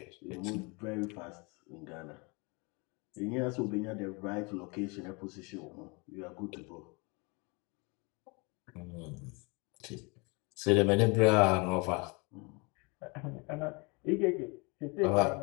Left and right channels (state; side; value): quieter; right; 29.8 dB